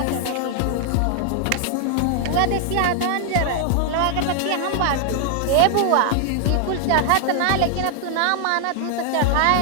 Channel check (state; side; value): different; both; correlation 0.00